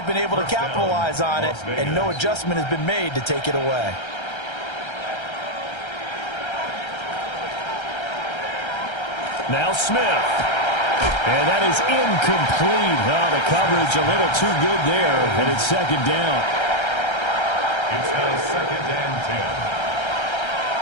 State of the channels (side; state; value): right; late; 1.3 ms